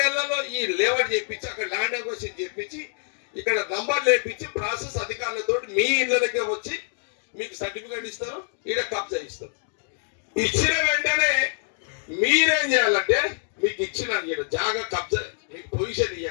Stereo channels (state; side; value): silent; right; 57 dB below the other